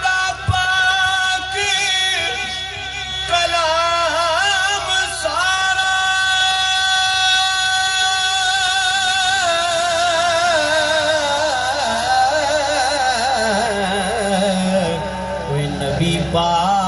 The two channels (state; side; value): identical; both; correlation 1.00